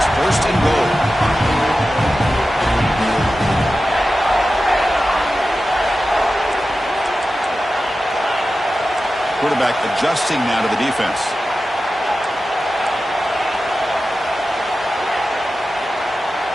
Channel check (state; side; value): normal; both; correlation 0.93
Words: 1st and goal. Quarterback adjusting now to the defense.